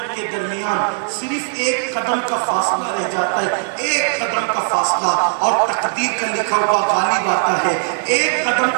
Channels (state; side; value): silent; left; digital silence